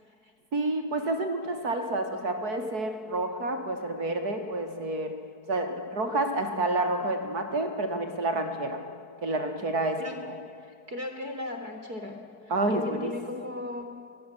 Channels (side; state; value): left; late; 4.6 ms